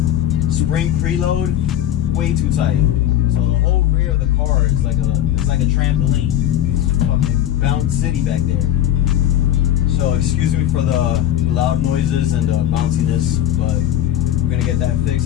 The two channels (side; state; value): right; quieter; 11.8 dB